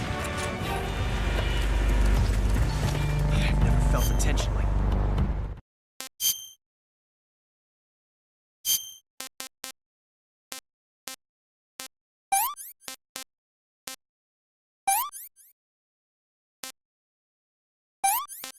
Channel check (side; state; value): both; identical; correlation 1.00